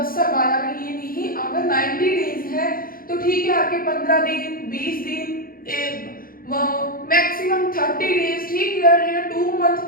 साल बाद आ रहे हो, ये नहीं। अगर 90 डेज है तो ठीक है, आपके 15 दिन 20 दिन मैक्सिमम 30 डेज, ठीक, या 2 मंथ,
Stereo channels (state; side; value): late; right; 0.42 ms